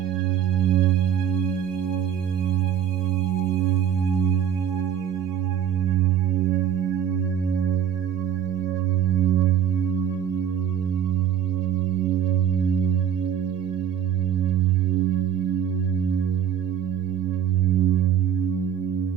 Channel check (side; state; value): left; quieter; 8.9 dB